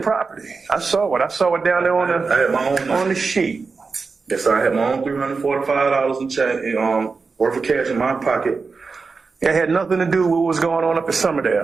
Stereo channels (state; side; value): quieter; left; 4.6 dB